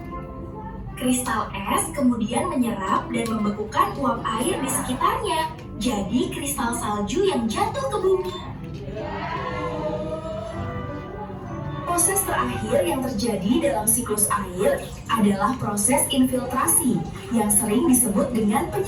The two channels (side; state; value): both; identical; correlation 1.00